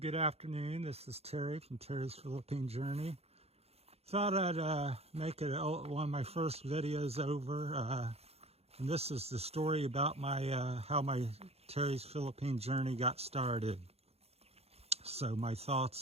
afternoon. This is Terry from Terry's Philippine Journey. Thought I'd make it one of my first videos over, and this is the story about my how my Terry's Philippine Journey got started. So my thoughts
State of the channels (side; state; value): left; late; 0.30 ms